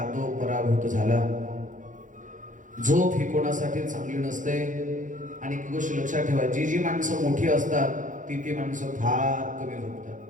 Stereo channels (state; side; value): late; left; 0.37 ms